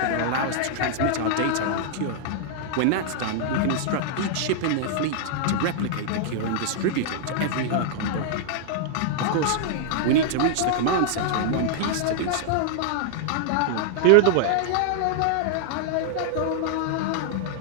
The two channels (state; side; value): different; both; correlation -0.01